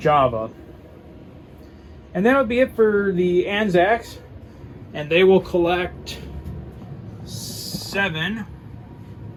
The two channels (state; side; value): identical; both; correlation 1.00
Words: And that'll be it for the Anzacs. And they will collect 7.